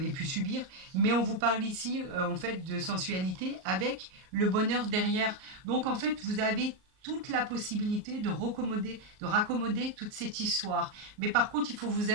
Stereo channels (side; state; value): left; late; 38 ms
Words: pu subir, mais on vous parle ici en fait de sensualité avec le bonheur derrière. Donc en fait, vous avez toute la possibilité de raccommoder toute cette histoire. Mais par contre, il faut vous